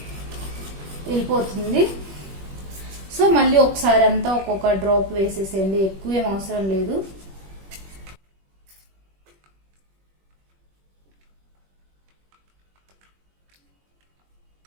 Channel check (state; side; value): late; left; 21 ms